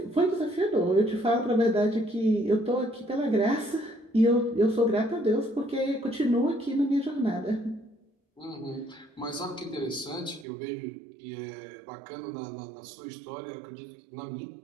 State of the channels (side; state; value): left; drops out; at 10.5 s